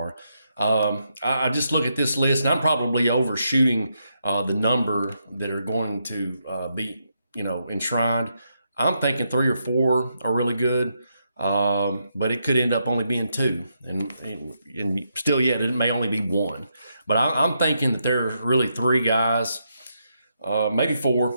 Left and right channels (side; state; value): both; inverted; correlation -0.81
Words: I just look at this list, and I'm probably overshooting the number that are going to be, enshrined. I'm thinking three or four are really good, but it could end up only being two, and still yet it may only be one. But I'm thinking that there are really three guys, maybe